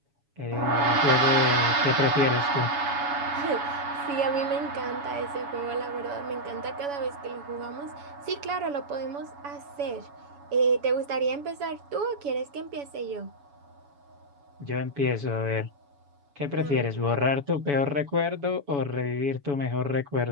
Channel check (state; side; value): late; left; 7.0 ms